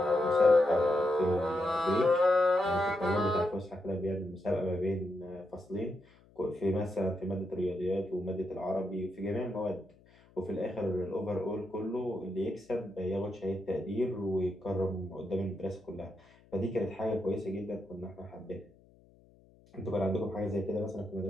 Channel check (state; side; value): noise; left; hum, 28 dB below the sound